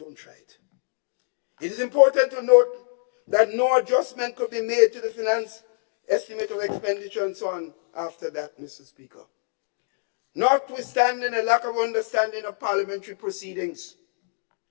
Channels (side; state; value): right; silent; digital silence